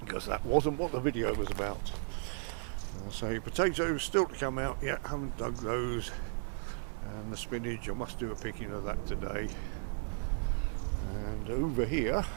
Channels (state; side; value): silent; left; 54 dB below the other